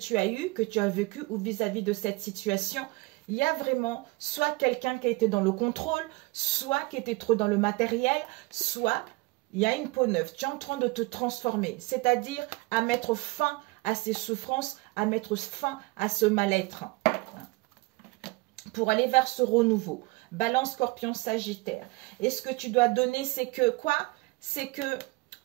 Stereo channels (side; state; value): left; quieter; 24.5 dB